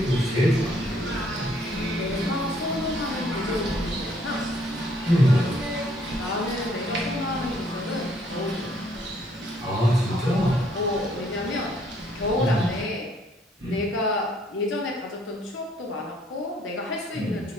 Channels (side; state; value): both; normal; correlation 0.65